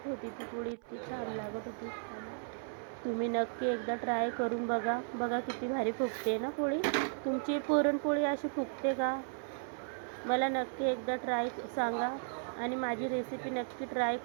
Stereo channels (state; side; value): silent; left; 54 dB below the other